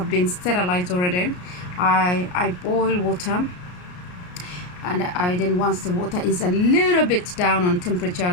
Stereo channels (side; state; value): right; late; 33 ms